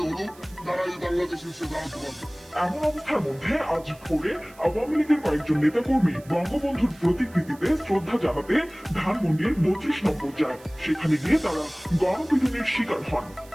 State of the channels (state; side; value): noise; right; hiss, 25 dB below the sound